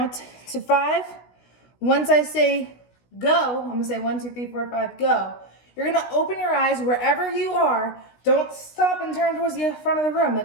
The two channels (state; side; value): late; right; 16 ms